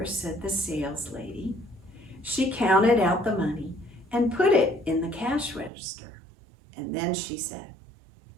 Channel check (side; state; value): left; drops out; at 5.7 s